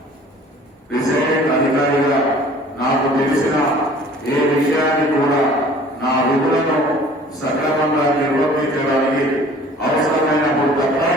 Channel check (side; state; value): both; normal; correlation 0.49